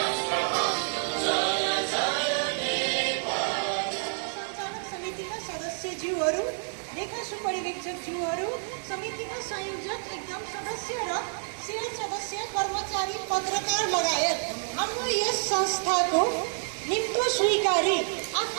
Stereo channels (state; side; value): silent; left; digital silence